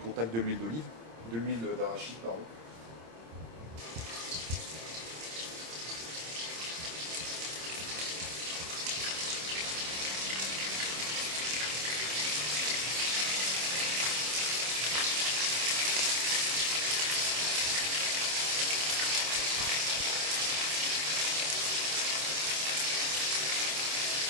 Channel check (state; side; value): late; left; 26 ms